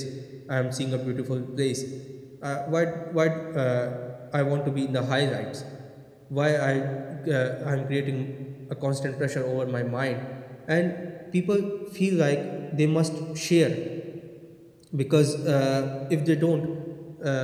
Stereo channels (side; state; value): both; identical; correlation 1.00